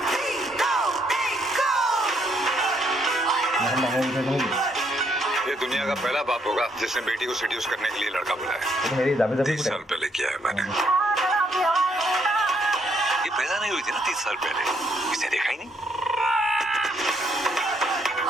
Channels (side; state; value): both; normal; correlation 0.72